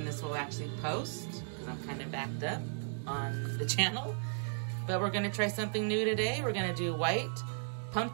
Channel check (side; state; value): left; silent; digital silence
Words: this will actually post, because I'm kind of backed up on the channel. But we're gonna try something new today. We're gonna do white